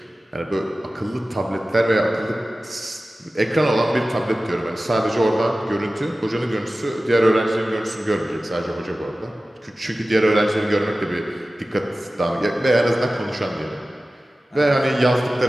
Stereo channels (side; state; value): both; normal; correlation 0.96